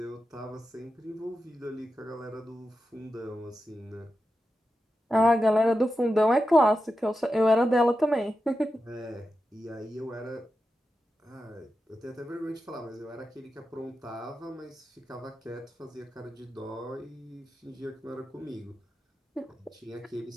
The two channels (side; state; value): both; normal; correlation 0.90